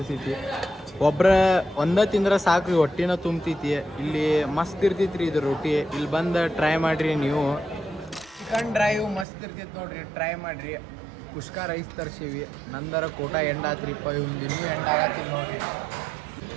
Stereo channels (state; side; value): drops out; left; at 9.2 s